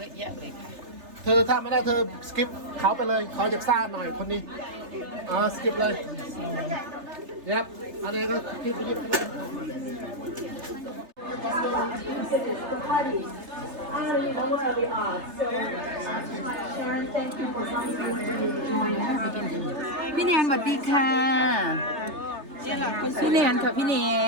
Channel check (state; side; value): late; left; 3.3 ms